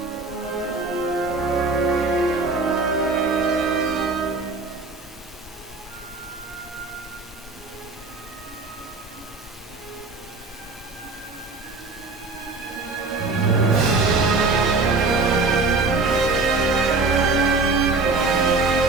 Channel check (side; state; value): left; quieter; 3.7 dB